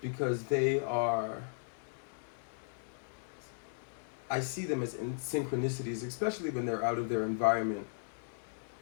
because they are, I see them as in synchronicities, especially when they're out of their environment.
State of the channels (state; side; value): silent; right; digital silence